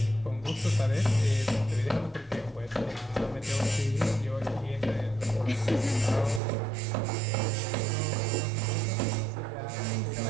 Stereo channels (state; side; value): drops out; left; at 6.4 s